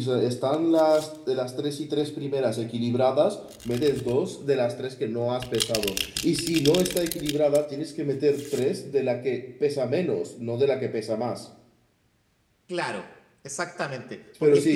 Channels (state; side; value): identical; both; correlation 1.00